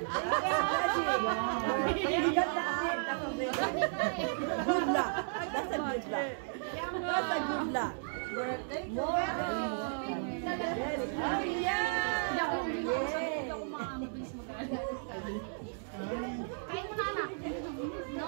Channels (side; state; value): left; silent; digital silence